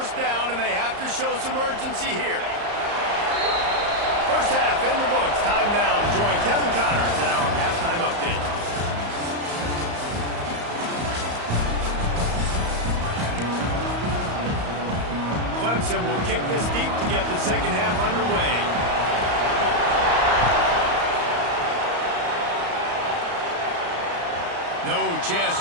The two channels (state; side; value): late; left; 34 ms